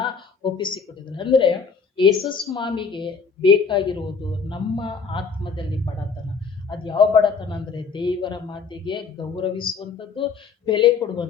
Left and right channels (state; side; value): quieter; right; 5.5 dB